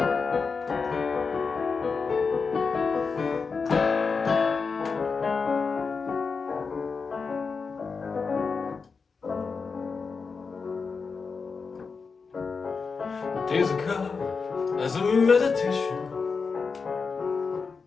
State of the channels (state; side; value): quieter; right; 5.0 dB